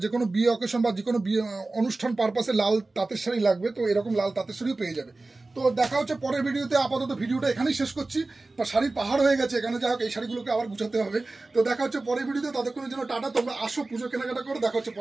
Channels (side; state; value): left; quieter; 3.2 dB